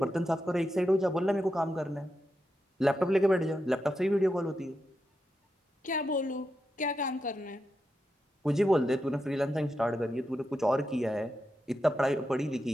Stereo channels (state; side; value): normal; both; correlation 0.87